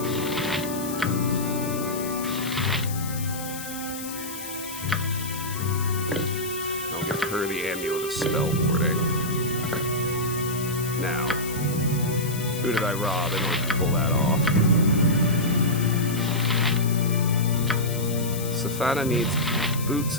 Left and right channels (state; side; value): noise; left; hiss, 10 dB below the sound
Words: I'll give her the Amulet of Spell Warding. Now, who did I rob in order to pull that off? Stefana needs boots